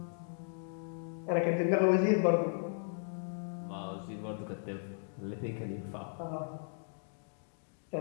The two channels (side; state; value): right; silent; digital silence